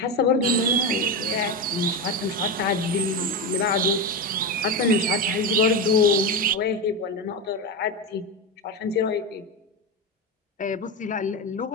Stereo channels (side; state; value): both; normal; correlation 0.15